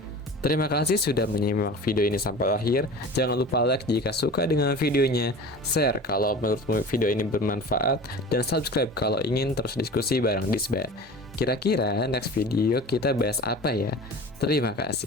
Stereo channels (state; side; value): normal; both; correlation 0.37